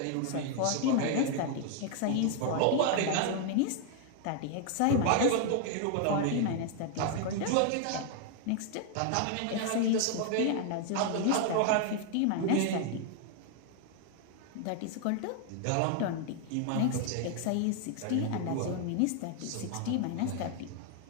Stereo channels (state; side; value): different; both; correlation 0.00